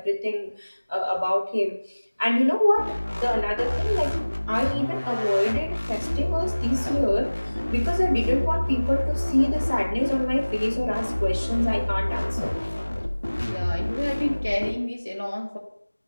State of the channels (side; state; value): both; inverted; correlation -1.00